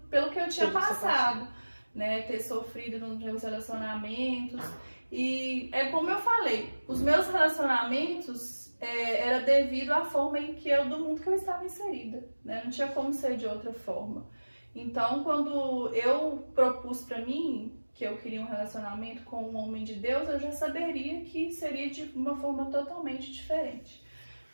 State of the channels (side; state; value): both; inverted; correlation -1.00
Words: pelo que eu tinha passado, né, ter sofrido nos meus relacionamentos. E é como eu falei, os meus relacionamentos era devido à forma do mundo que eu estava inserida, né, não tinha como ser de outra forma. Então, quando eu propus para mim que eu queria um relacionamento com um homem de Deus, eu já saberia que seria de uma forma totalmente diferente,